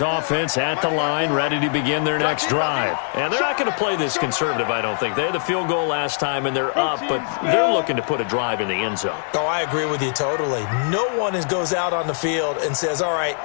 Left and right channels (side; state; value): right; silent; 64 dB below the other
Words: offense at the line, ready to begin their next drive. And they're not going to play this conservative, I don't think. They had the field goal last time, and they're up, but they're looking to put a drive in the end zone. Oh, I agree with you totally. No one goes out on the field and says, all right,